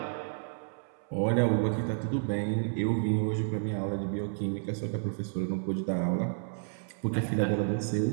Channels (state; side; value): silent; left; 57 dB below the other